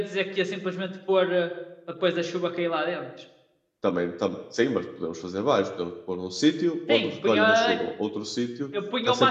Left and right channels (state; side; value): identical; both; correlation 1.00